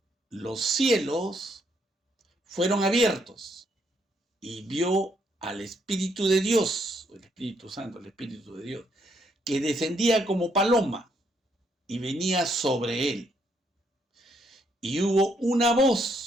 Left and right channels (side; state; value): both; normal; correlation 0.73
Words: los cielos fueron abiertos, y vio al Espíritu de Dios, el Espíritu Santo, el Espíritu de Dios, que descendía como paloma y venía sobre él. Y hubo